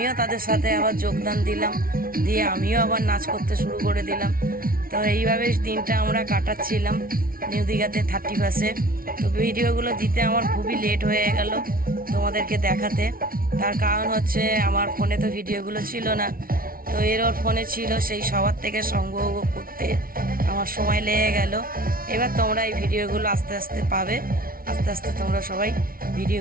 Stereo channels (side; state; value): left; late; 0.43 ms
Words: তাদের সাথে আবার যোগদান দিলাম, দিয়ে আমিও আবার নাচ করতে শুরু করে দিলাম। তো এইভাবে দিনটা আমরা কাটাচ্ছিলাম নিউ দীঘাতে 31শে। তো ভিডিওগুলো দিতে আমার খুবই লেট হয়ে গেল তোমাদেরকে দেখাতে। তার কারণ হচ্ছে আমার ফোনে তো ভিডিওগুলো ছিল না, তো ওর ফোনে ছিল, সেই সবার থেকে সংগ্রহ করতে আমার সময় লেগে গেল। এবার তোমরা এই ভিডিওগুলো আস্তে আস্তে পাবে, আস্তে আস্তে তোমরা সবাই